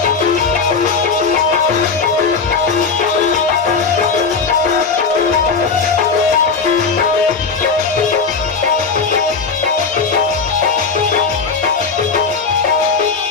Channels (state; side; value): quieter; right; 5.1 dB